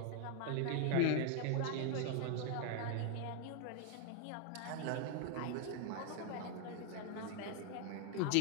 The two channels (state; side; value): different; both; correlation 0.01